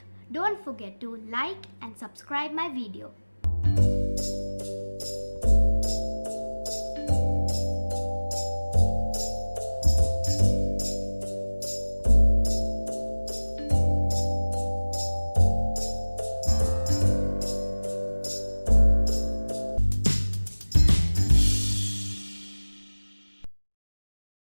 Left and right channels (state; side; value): inverted; both; correlation -1.00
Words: don't forget to like and subscribe my video.